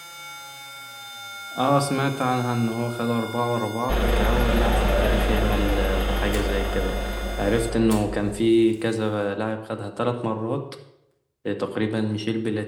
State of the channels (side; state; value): both; identical; correlation 1.00